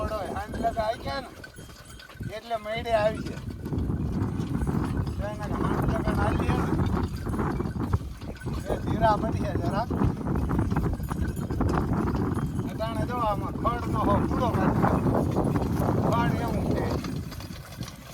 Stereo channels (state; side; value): identical; both; correlation 1.00